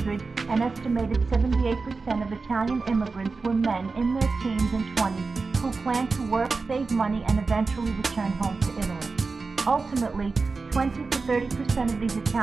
an estimated 78% of Italian immigrants were men in their teens and 20s who planned to work, save money, and eventually return home to Italy. Ultimately, 20 to 30% of these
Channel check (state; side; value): quieter; left; 4.2 dB